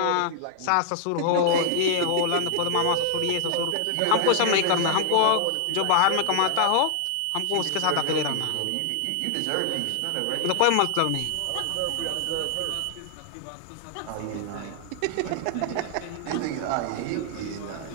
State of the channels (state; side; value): different; both; correlation 0.00